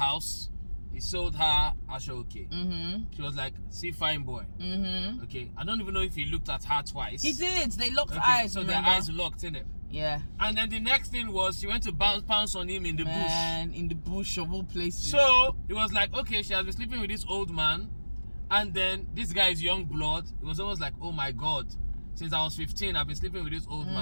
he sold her Ayope. She was like, "See, fine boy." Okay, I don't even know if he looked at her twice. He did. They locked eyes. So remember? their eyes locked, innit? Yeah. And then the next thing was she went to pounce on him in the bush. In the bush of all places. So it was like, okay, she has been sleeping with this old man, and then this guy is young blood. It was almost like, oh my god. since I was 15, I've been sleeping with this old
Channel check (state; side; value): inverted; both; correlation -1.00